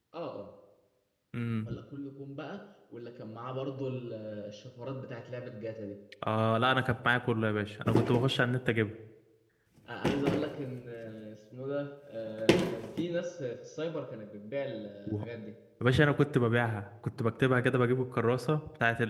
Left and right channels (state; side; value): identical; both; correlation 1.00